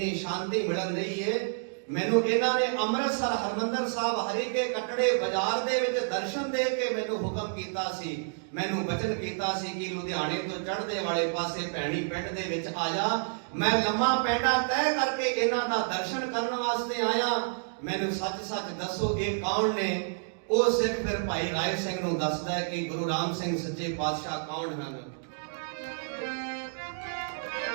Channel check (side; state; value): left; silent; digital silence